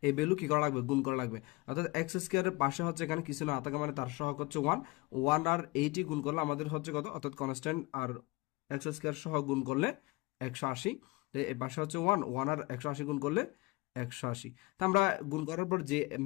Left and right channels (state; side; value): quieter; right; 24.1 dB